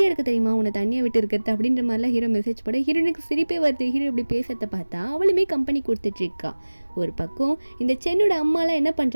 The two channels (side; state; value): both; inverted; correlation -1.00